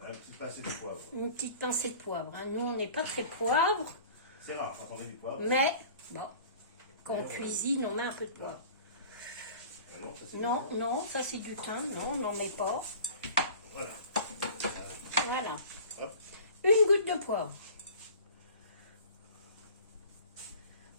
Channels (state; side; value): inverted; both; correlation -0.44